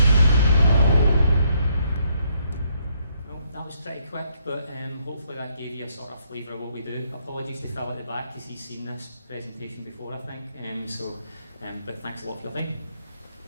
Pretty quick, but hopefully that gave you a sort of flavour of what we do. Apologies to Phil at the back because he's seen this presentation before, I think. But thanks a lot for your time.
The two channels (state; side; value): inverted; both; correlation -0.72